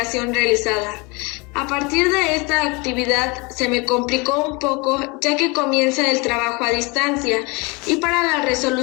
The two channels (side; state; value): right; quieter; 27.5 dB